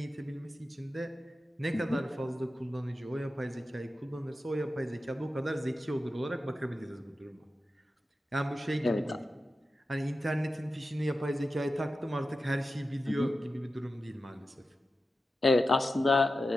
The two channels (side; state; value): both; normal; correlation 0.92